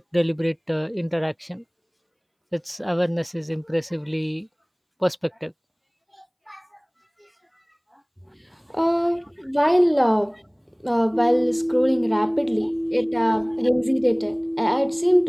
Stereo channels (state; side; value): identical; both; correlation 1.00